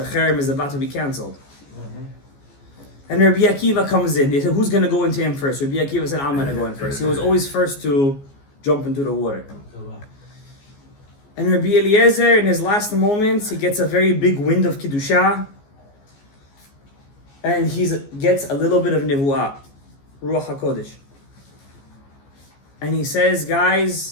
Cherem is about to be cancelled. And Rabbi Akiva comes in. They said, who's going to go into him first? Rabbi Akiva said, I'm going to go in first. He was always first to jump into the water. And Rabbi Eliezer, in his last moments, he gets a very big wind of Kiddusha. And he gets a little bit of Nevuah, Ruach HaKodesh. And he says,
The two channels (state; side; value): late; right; 14 ms